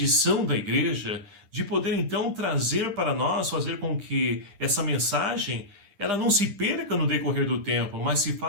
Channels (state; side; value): late; left; 9.9 ms